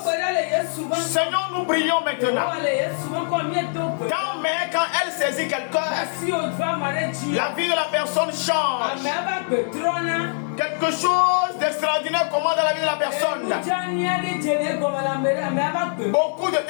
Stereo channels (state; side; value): silent; right; 62 dB below the other